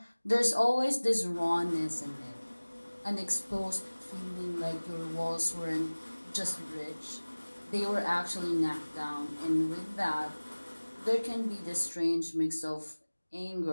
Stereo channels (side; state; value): both; inverted; correlation -1.00